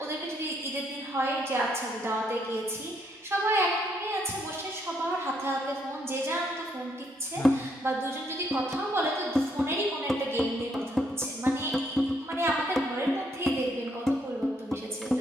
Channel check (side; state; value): both; normal; correlation 0.73